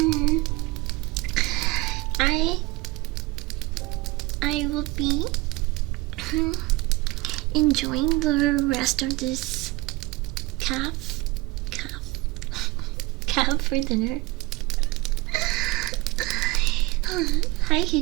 I will be enjoying the rest of this calf for dinner. Hi,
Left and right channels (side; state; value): left; quieter; 22.5 dB